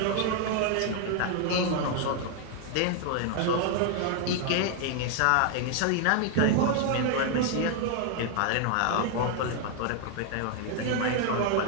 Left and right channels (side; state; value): both; different; correlation 0.00